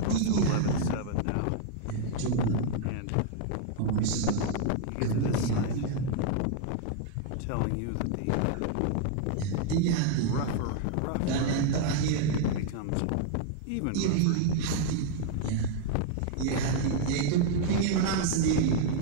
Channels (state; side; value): different; both; correlation 0.00